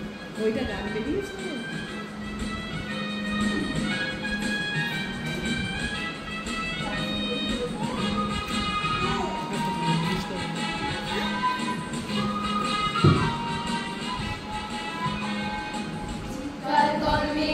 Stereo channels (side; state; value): both; identical; correlation 1.00